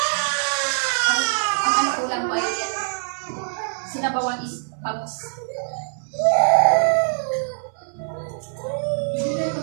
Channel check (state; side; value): silent; left; digital silence